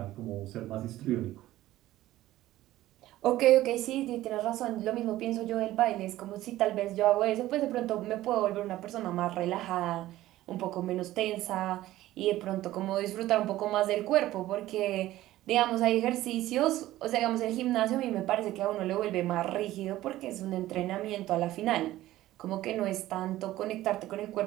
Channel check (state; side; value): quieter; left; 15.3 dB